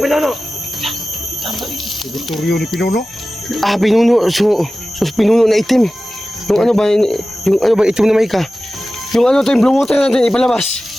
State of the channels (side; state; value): both; normal; correlation 0.96